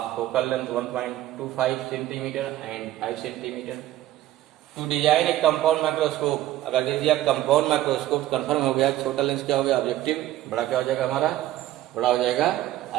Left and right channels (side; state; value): left; quieter; 14.2 dB